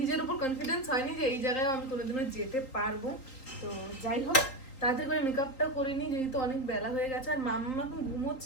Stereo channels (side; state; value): right; late; 3.8 ms